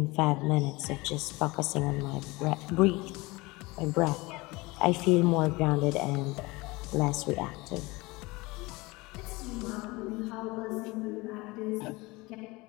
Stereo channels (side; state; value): right; quieter; 23.0 dB